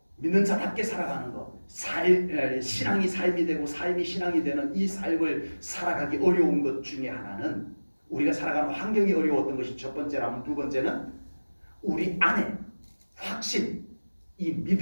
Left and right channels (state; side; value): inverted; both; correlation -1.00